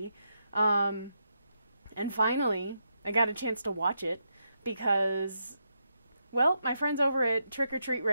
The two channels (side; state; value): both; inverted; correlation -0.82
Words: And finally, I got a chance to watch it because, well, my friends over at Trick or Treat